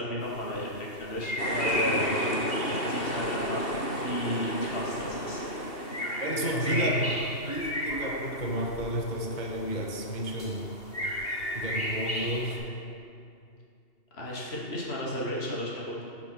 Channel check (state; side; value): late; right; 2.8 ms